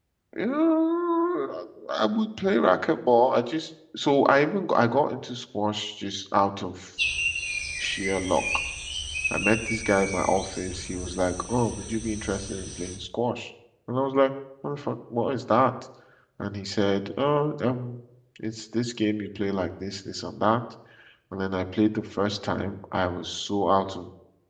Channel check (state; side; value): identical; both; correlation 1.00